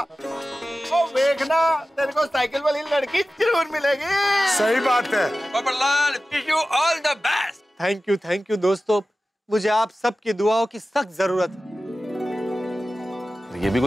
ओ देखना, तेरे को साइकिल वाली लड़की जरूर मिलेगी। सही बात है। Popatlal, wish you all the best. Thank you दोस्तों, मुझे आप सबकी दुआओं की सख्त जरूरत है। ये भी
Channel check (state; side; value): normal; both; correlation 0.95